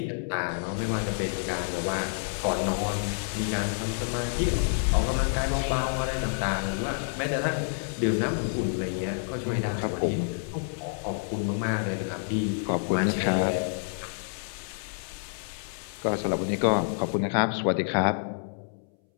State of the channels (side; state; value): right; silent; 59 dB below the other